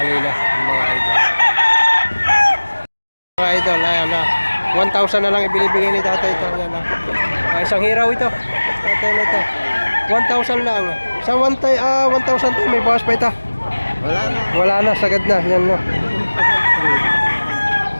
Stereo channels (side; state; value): both; inverted; correlation -1.00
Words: na mga idol. Mga idol, ayan 1,000 na lang ibinibigay ni tatay ito. Ayan isang hiraw ito. Tatay na ito. 1,000 lang. Sa 1,000 to may bawas pa ito. Wala na, sagad na. Yan no.